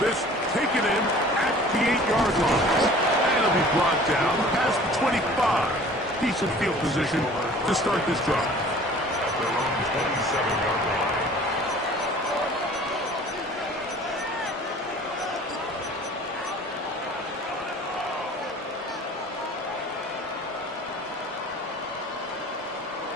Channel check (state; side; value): normal; both; correlation 0.47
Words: taken in at the 8-yard line. And it'll be brought down past the 25. Decent field position to start this drive. At their own 27-yard line.